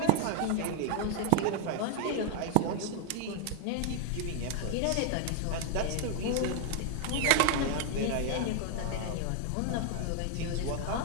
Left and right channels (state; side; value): different; both; correlation 0.00